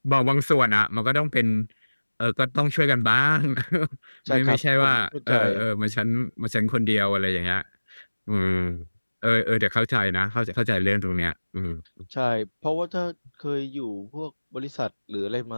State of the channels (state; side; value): inverted; both; correlation -1.00